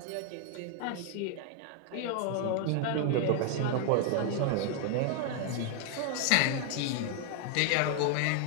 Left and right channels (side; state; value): both; different; correlation 0.00